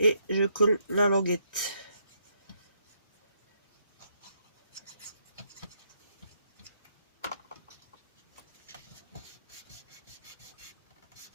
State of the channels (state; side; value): inverted; both; correlation -0.74